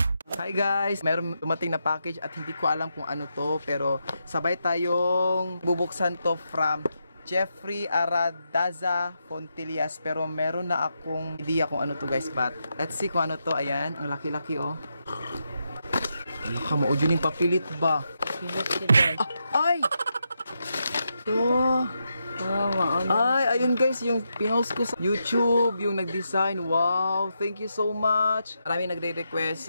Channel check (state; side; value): inverted; both; correlation -0.84